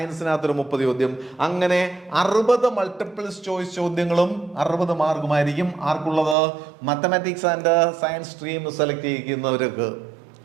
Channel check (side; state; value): left; drops out; at 6.4 s